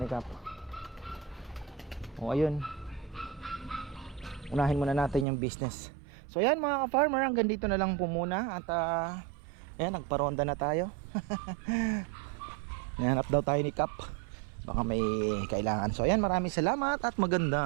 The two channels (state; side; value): drops out; left; at 5.2 s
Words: ni Cap? O ayun, unahin muna natin yung business. So ayan mga ka-farmer, hanggang dito na lang po muna. At Ayan, nagparonda na tayo. Nahanap daw tayo ni Kap. Baka may kailangan. So ayan, maraming salamat at